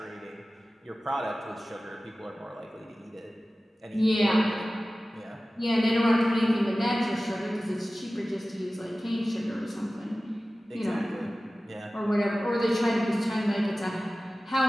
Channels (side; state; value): both; normal; correlation 0.96